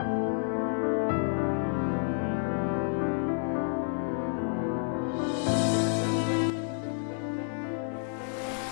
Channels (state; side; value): silent; right; 58 dB below the other